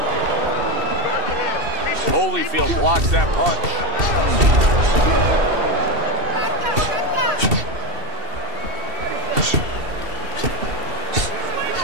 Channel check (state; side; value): late; left; 2.7 ms